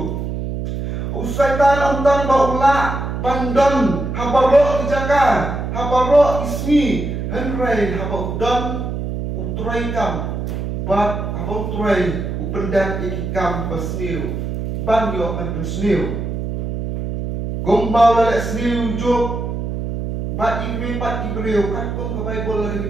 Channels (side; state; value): right; noise; hum, 4 dB below the sound